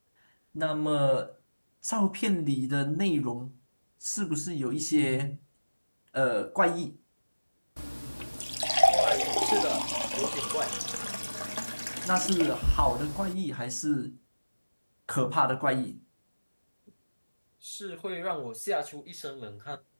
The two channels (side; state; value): both; inverted; correlation -1.00